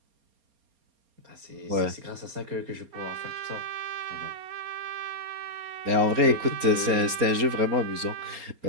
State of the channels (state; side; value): late; left; 4.3 ms